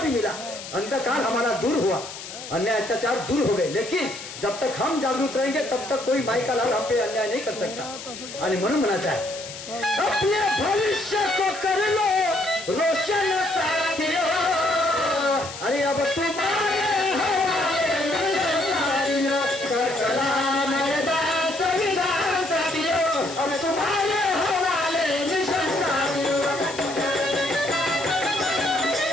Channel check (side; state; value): left; noise; hiss, 12 dB below the sound